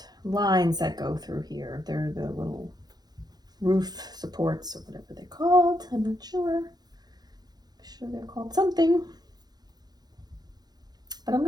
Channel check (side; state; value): left; late; 0.19 ms